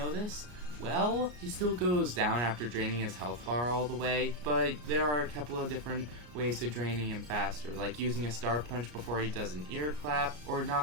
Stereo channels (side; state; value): left; late; 33 ms